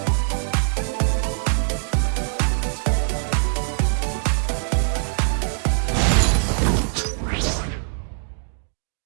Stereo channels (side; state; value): left; silent; digital silence